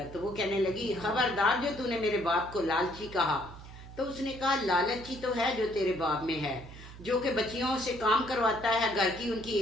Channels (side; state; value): right; noise; hum, 16 dB below the sound